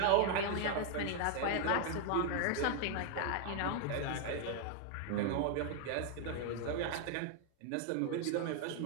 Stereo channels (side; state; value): both; different; correlation 0.00